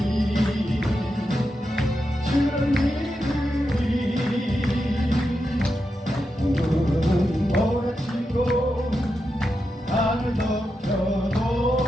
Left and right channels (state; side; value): normal; both; correlation 0.87